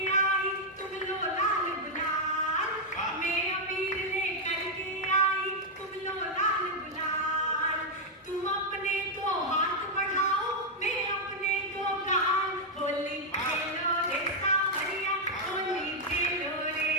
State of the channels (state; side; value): normal; both; correlation -0.01